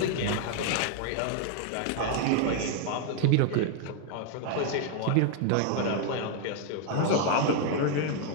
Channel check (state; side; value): different; both; correlation 0.00